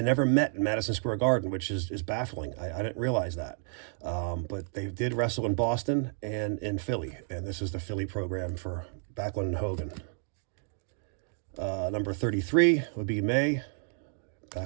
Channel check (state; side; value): silent; left; 57 dB below the other